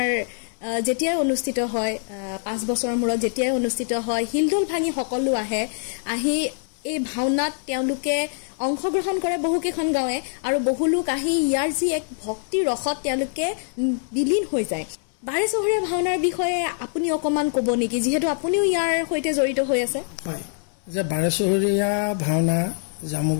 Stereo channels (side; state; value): right; silent; 63 dB below the other